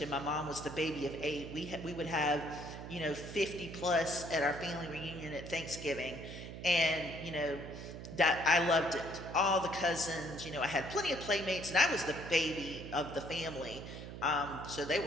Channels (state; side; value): noise; right; hum, 10 dB below the sound